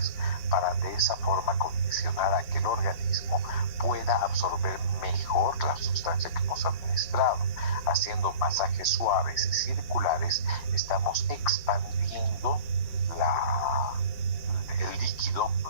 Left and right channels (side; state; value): right; late; 5.3 ms